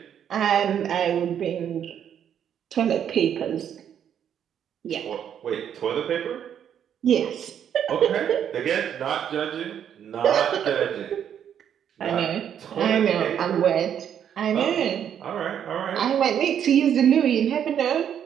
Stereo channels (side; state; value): left; quieter; 9.1 dB